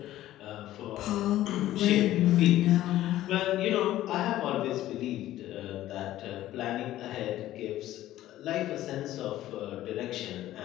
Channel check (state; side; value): quieter; right; 14.2 dB